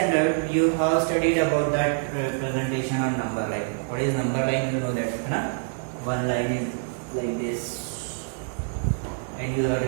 you have studied about that representation on number line. What is number line? You know that, na? One line is like this, and you have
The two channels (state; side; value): silent; left; 61 dB below the other